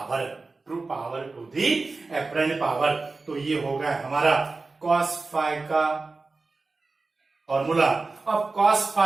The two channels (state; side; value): quieter; left; 3.7 dB